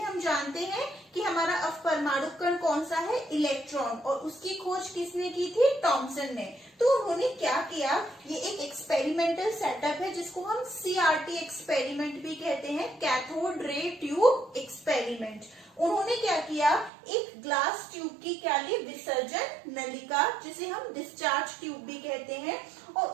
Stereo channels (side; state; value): left; drops out; at 16.9 s